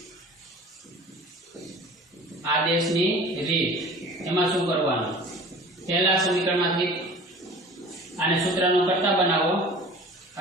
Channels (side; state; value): both; normal; correlation 0.43